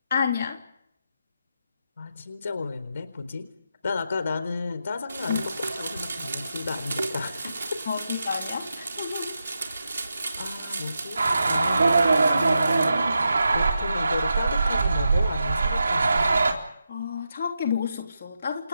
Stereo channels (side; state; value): both; inverted; correlation -0.87